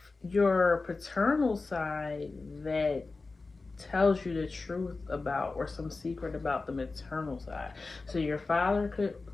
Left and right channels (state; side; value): quieter; right; 3.8 dB